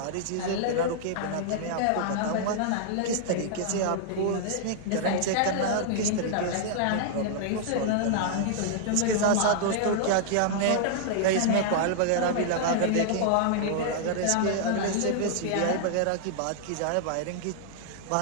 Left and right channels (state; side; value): different; both; correlation -0.01